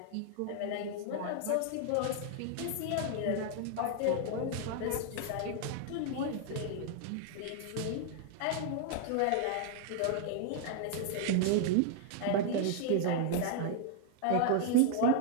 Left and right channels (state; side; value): different; both; correlation 0.00